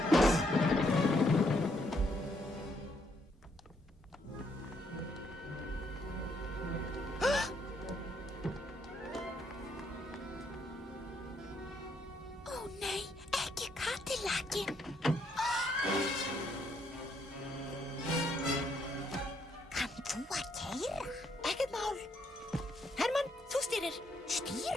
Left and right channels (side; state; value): both; normal; correlation 0.73